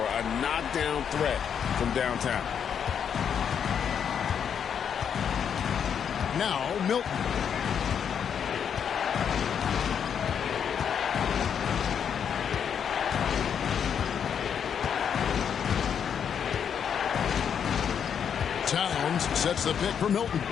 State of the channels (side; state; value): right; quieter; 7.8 dB